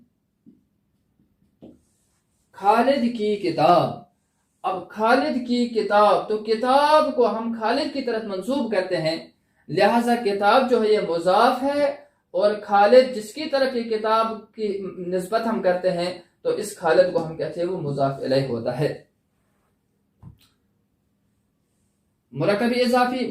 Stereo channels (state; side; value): identical; both; correlation 1.00